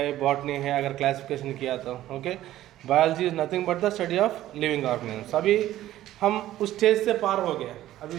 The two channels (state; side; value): quieter; left; 14.0 dB